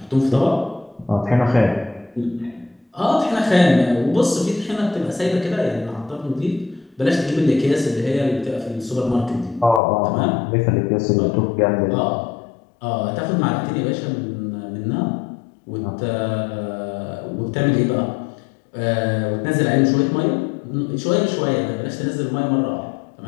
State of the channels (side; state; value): right; drops out; at 9.8 s